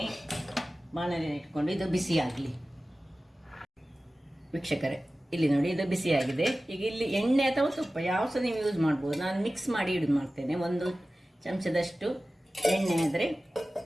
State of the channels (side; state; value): both; normal; correlation 0.96